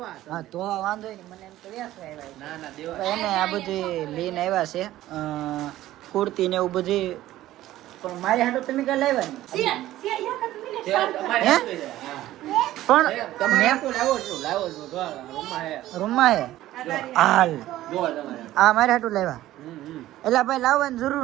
હા તો વાંધો નહીં. મને એમ તો વેસવા આવ્યા. ના ના દેવા. તો એને આ બધી લઈને આવ્યા છે કુર્તી ને એવું બધી. પણ મારી હાટો તમે કઈ લાવ્યા ને પણ રૂમમાં હે હાલ આ મારે હાટું લાવ્યા. એટલે ભાઈ લાવવાની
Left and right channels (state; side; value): quieter; left; 14.8 dB